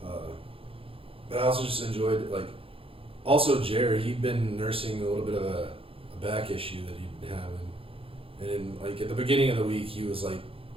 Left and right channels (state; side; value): late; left; 0.27 ms